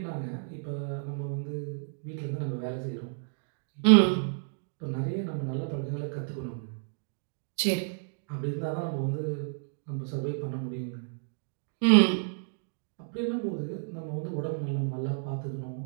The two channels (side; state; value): left; silent; digital silence